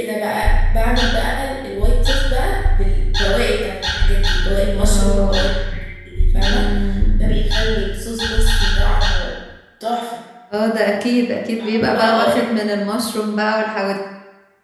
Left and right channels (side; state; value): both; identical; correlation 1.00